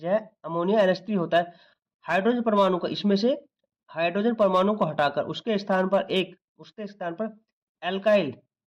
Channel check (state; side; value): identical; both; correlation 1.00